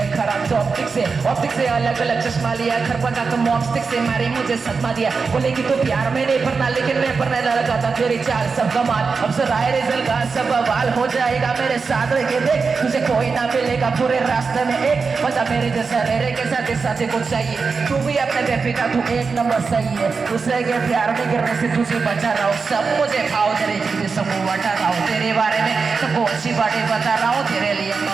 खराब तो ऑप्टिक से अलग अलग चश्मा लिया, घर पहुंचा तो मॉपस्टिक से मारी मुझे सदमा दिया। बोले कि तू प्यार में नहीं पढ़ना, लेकिन मैं पढ़ने लगा था। तेरी चाल सब कमाल, अब से राय रिजल्ट का सब बवाल हो जाएगा मेरे साथ रह के देख, तुझे कोई ना मिलेगा पूरे रास्ते में एक बता मेरे जैसा मेरे के साथ कुछ चाहिए। तू भी अपने बेबी का तू एक नंबर सही है, दूसरे के प्यार में गिरने से तुझे बचा रहा हूँ। सब मुझे भाव दे रही, तुझे सबको बता रहा हूँ। तेरे बारे में सबको अच्छी बातें बता रहा हूँ, तेरे लिए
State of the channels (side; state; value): left; quieter; 4.9 dB